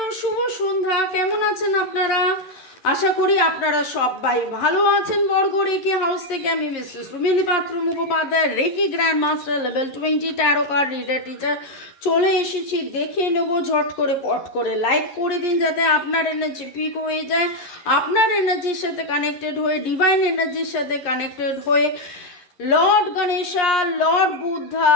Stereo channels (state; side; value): late; right; 11 ms